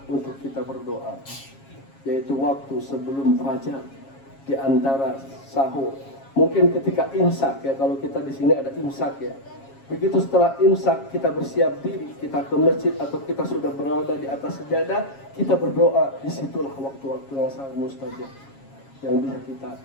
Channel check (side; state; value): right; late; 7.3 ms